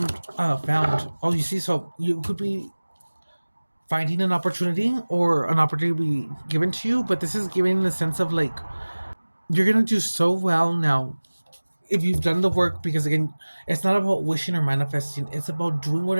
Oh, you see, so you could be finding an opportunity or an opportunity be given to you, but this is giving the sense of like you're gonna do so well now if you've done the work, because again, it's not about wishing or manifesting, it's about doing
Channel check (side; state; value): both; inverted; correlation -1.00